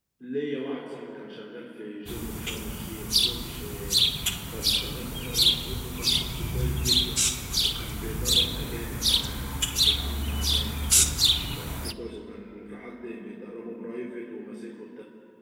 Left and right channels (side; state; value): both; identical; correlation 1.00